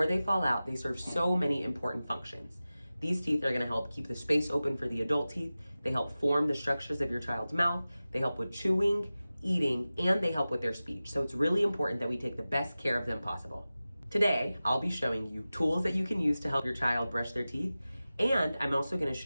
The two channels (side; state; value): both; inverted; correlation -0.96